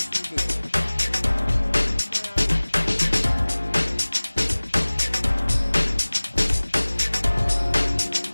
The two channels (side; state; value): both; inverted; correlation -1.00